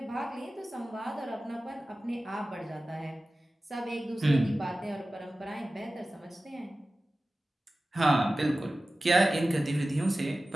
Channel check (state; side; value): normal; both; correlation 0.96